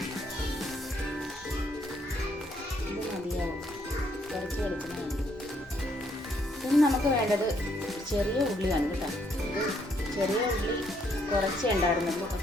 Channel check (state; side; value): normal; both; correlation 0.71